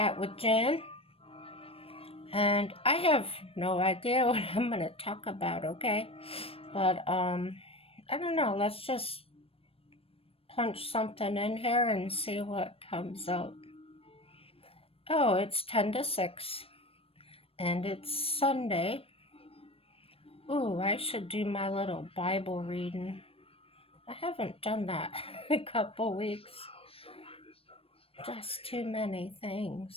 with Jen. And I have no idea what I'm going to talk about, okay? But I don't know, let's just punch something in here and see what comes up. Oh, it's 10 to 6 and it's Sunday. Ooh, I should do my little Bible reading. I haven't done that in a couple weeks. Just too many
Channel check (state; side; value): late; right; 0.28 ms